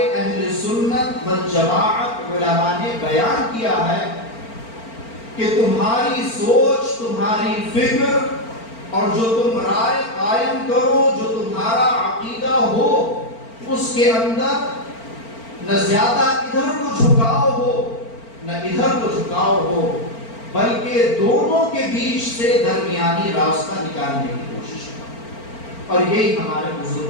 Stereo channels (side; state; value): right; late; 4.4 ms